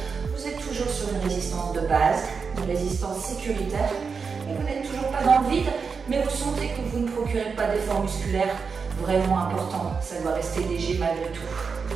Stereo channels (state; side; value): quieter; left; 5.4 dB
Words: Vous êtes toujours sur une résistance de base, une résistance sécuritaire, et vous n'êtes toujours pas dans le vide, mais vous sentez que vous ne procurez pas d'effort musculaire vraiment important. Ça doit rester léger malgré tout.